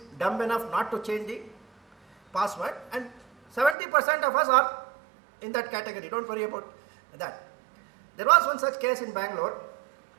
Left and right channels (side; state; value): left; drops out; at 3.8 s